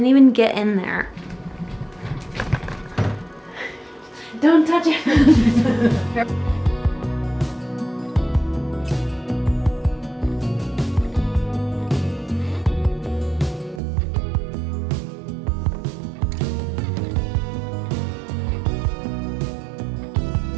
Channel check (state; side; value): drops out; left; at 13.8 s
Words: even get in there. Don't touch it.